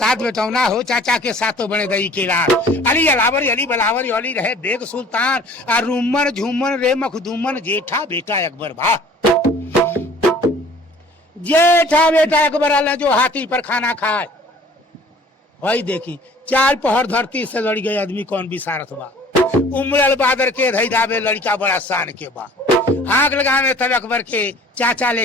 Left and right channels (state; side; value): normal; both; correlation 0.51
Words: बेटौना हो चाचा के साथों बने दई केला। अली अलावर अली बलावर अली रहे बेग सुल्तान आ रूमन झूमन रे मखदूमन जेठा बेटा अकबर भा। जेठा बेटा अकबर आला जो हाथी पर खाना खाए। वही देखी चार पहर धरती से लड़ गए आदमी कौन विसारत बा। उमड़ल बादर के धई धाबे लड़का बड़ा शान के बा। आग लगावे तब अकबर के चाचा